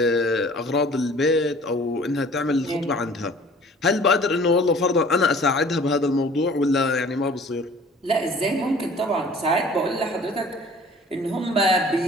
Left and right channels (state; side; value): normal; both; correlation 0.50